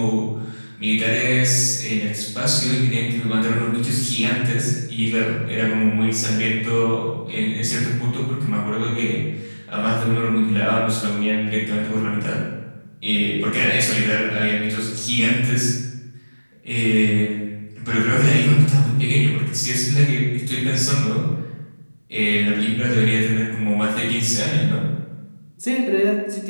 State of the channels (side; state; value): both; inverted; correlation -1.00